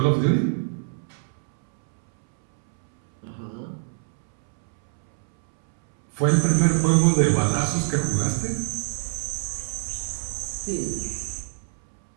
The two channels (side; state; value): left; silent; 62 dB below the other